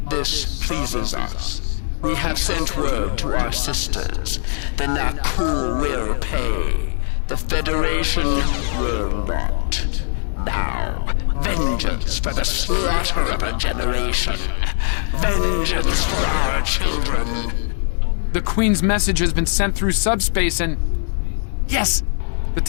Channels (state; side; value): silent; right; 65 dB below the other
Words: This pleases us. We have sent word to our sisters. The Nakul will pay. The Federation will not. Now, vengeance for the slaughter of a generation. Vengeance for our children. The Queen's message has been sent through subspace and... Yes! The